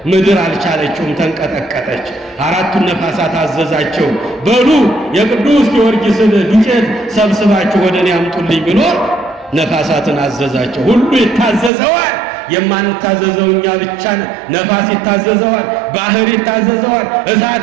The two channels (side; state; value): left; drops out; at 11.7 s